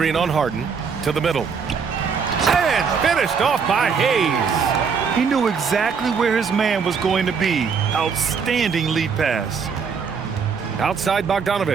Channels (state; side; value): quieter; left; 5.9 dB